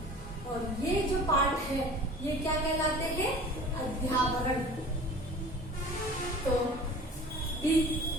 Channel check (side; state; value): both; normal; correlation 0.42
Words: और ये जो पार्ट है ये क्या कहलाते हैं? अध्यावरण। तो